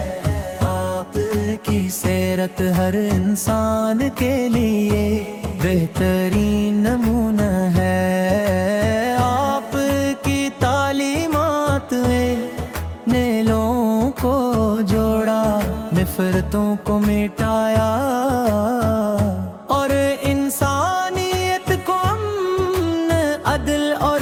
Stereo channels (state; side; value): identical; both; correlation 1.00